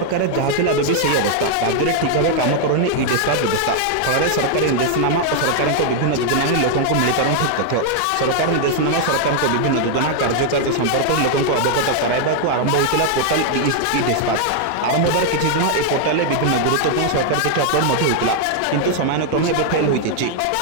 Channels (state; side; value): different; both; correlation 0.00